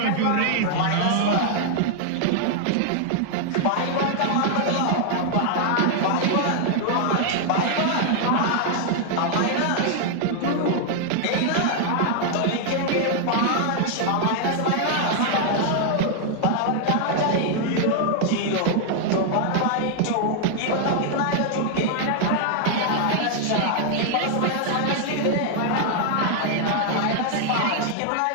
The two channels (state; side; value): different; both; correlation 0.00